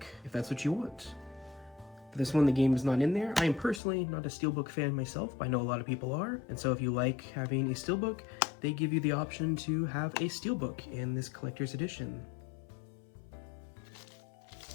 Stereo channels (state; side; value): drops out; right; at 3.8 s